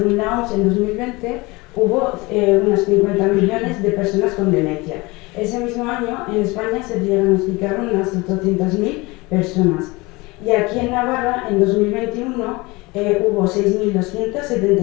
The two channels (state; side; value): quieter; right; 23.6 dB